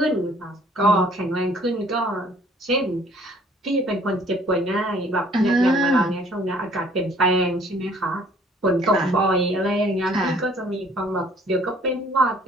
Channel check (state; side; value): normal; both; correlation 0.58